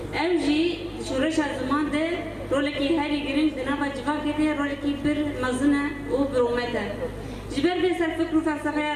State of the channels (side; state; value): both; identical; correlation 1.00